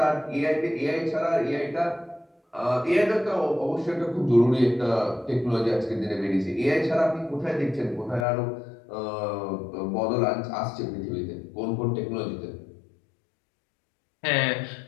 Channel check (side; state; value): right; drops out; at 8.2 s